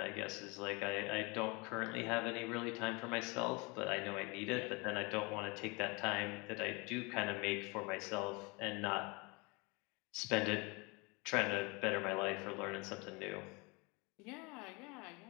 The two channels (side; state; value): right; quieter; 28.0 dB